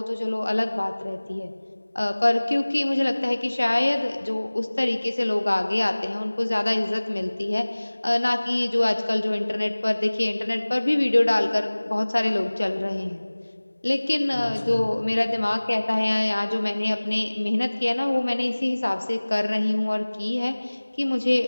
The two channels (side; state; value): both; inverted; correlation -1.00